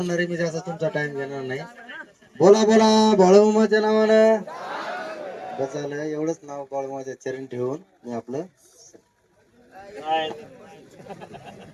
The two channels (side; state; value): both; identical; correlation 1.00